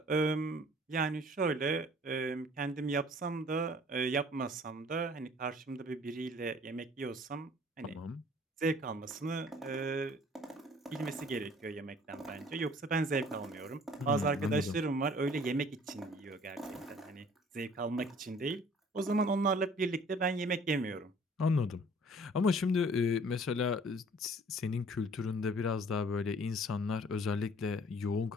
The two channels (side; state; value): both; normal; correlation 0.53